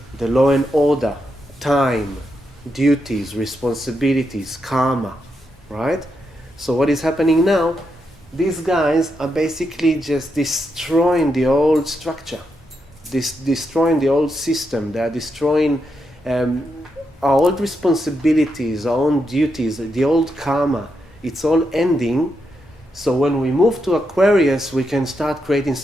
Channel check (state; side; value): normal; both; correlation 0.83